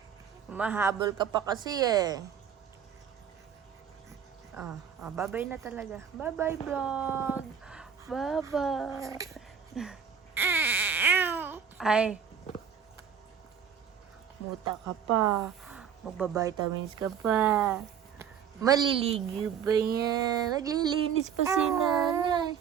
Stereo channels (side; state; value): left; quieter; 7.7 dB